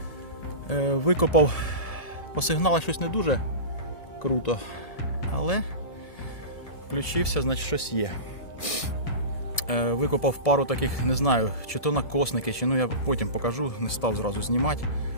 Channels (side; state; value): right; late; 1.7 ms